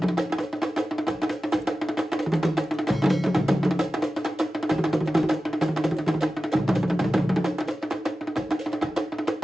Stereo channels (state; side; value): normal; both; correlation 0.94